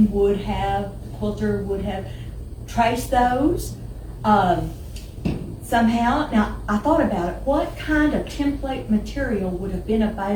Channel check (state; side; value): identical; both; correlation 1.00